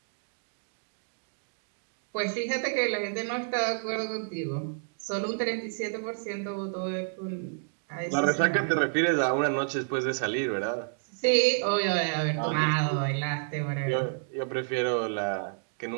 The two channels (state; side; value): silent; left; digital silence